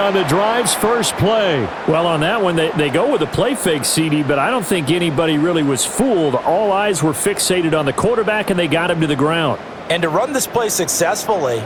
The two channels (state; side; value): identical; both; correlation 1.00